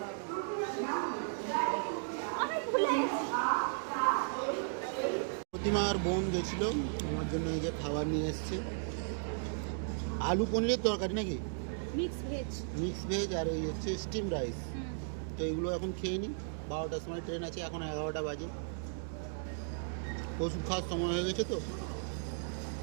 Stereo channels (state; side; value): silent; left; digital silence